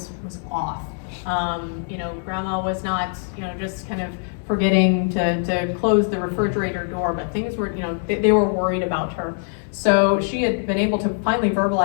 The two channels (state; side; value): silent; right; 64 dB below the other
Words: off. Grandma was not, just kind of forgetting to close the refrigerator door, but things were, they were worried about her. So she had been able to finally